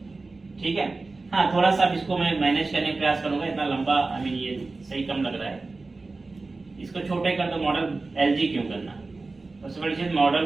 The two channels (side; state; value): left; quieter; 3.6 dB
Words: ठीक है। हाँ, थोड़ा सा इसको मैं मैनेज करने का प्रयास करूंगा, इतना लंबा आई मीन ये सही कम लग रहा है। इसको छोटे कर दो, मॉडल LG क्यों करना। सबसे बड़ी चीज मॉडल